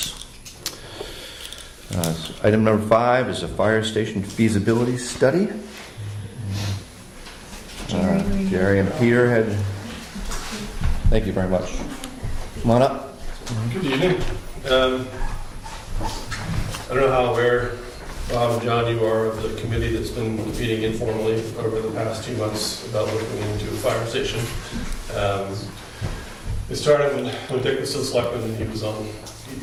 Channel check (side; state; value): both; identical; correlation 1.00